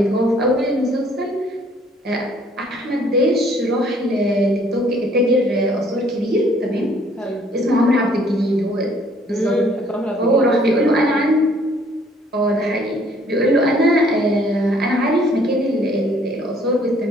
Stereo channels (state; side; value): normal; both; correlation 0.61